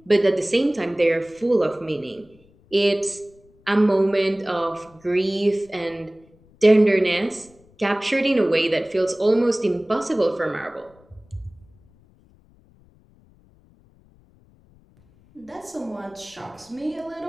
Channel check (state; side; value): noise; left; rumble, 30 dB below the sound